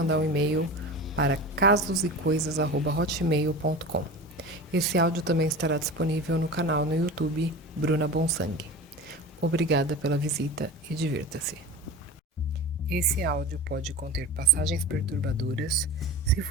um e-mail para casosecoisas@hotmail.com. Esse áudio também estará disponível no canal no YouTube Bruna Bonsangue. Obrigada pela visita e divirta-se. Esse áudio pode conter passagens perturbadoras. Se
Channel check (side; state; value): both; normal; correlation 0.32